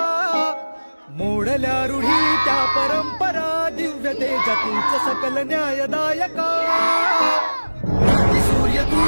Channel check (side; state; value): both; inverted; correlation -1.00